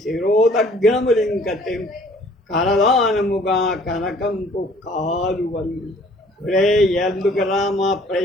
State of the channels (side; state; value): both; normal; correlation 0.56